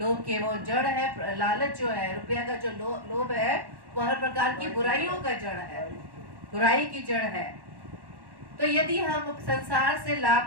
के वो जड़ है, लालच जो है, रुपया का जो लोभ है वो हर प्रकार की बुराइयों का जड़ है, बुराई की जड़ है। तो यदि हम संसार से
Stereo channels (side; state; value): left; late; 1.1 ms